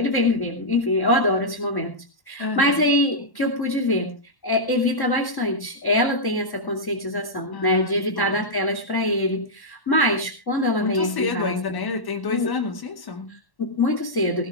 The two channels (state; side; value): late; right; 1.1 ms